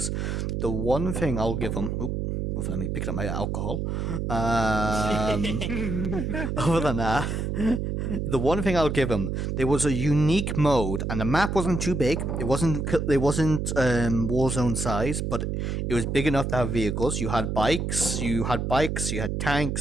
The one thing I'll give them. Let me pick up my alcohol. Other than that, the one thing I'll give them, there was a unique mode, and the map wasn't too big. It wasn't Warzone size, but it was big enough to have vehicles. You had bikes, you had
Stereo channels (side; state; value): right; noise; hum, 2 dB below the sound